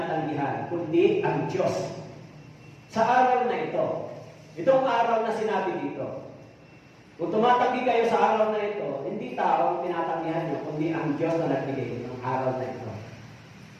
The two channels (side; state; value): both; identical; correlation 1.00